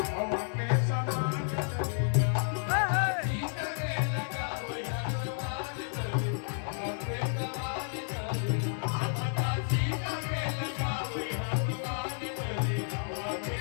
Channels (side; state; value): right; silent; 57 dB below the other